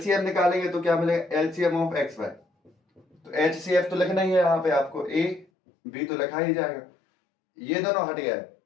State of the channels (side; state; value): right; drops out; at 5.5 s